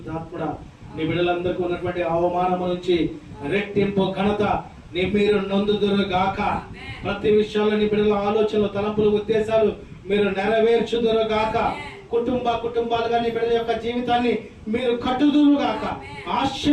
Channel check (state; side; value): identical; both; correlation 1.00